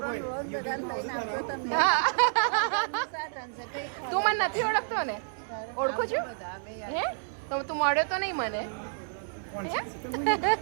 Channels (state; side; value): silent; left; digital silence